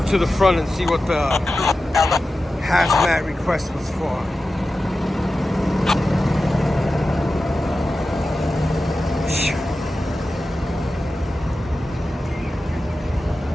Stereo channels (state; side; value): normal; both; correlation 0.93